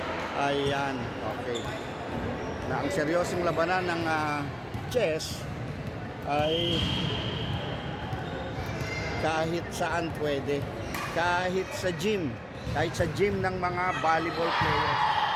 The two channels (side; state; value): both; identical; correlation 1.00